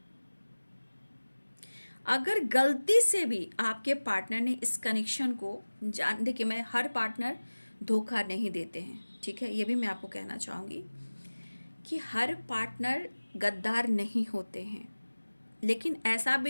अगर गलती से भी आपके पार्टनर ने इस कनेक्शन को देखिए मैं हर पार्टनर धोखा नहीं देते हैं, ठीक है, ये भी मैं आपको कहना चाहूँगी कि हर पार्टनर गद्दार नहीं होते हैं, लेकिन ऐसा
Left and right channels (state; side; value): inverted; both; correlation -1.00